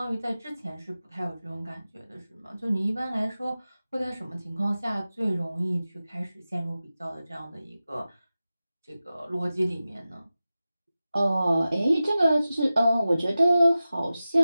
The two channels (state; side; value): inverted; both; correlation -0.95